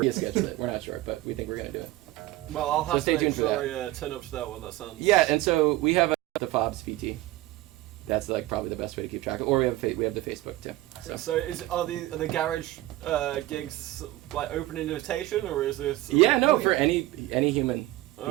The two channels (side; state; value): left; quieter; 17.3 dB